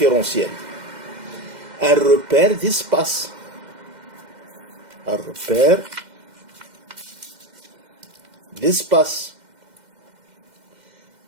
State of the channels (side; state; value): left; late; 2.1 ms